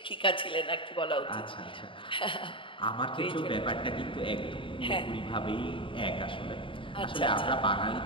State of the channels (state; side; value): late; right; 0.25 ms